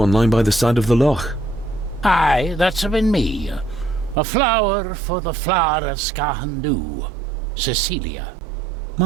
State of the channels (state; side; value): drops out; left; at 4.2 s